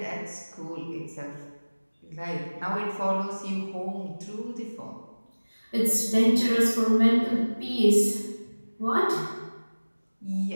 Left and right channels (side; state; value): both; inverted; correlation -1.00